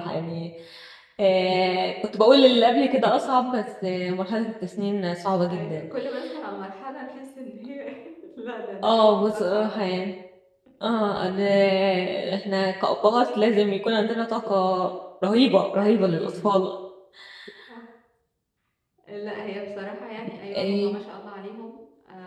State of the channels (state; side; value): identical; both; correlation 1.00